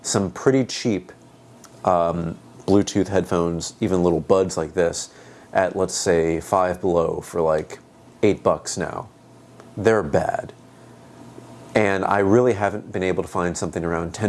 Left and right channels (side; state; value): both; identical; correlation 1.00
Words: some pretty cheap Bluetooth headphones, even little buds like this, at, let's say, Five Below for like $8 now. They're bad. And I really haven't been able to find something around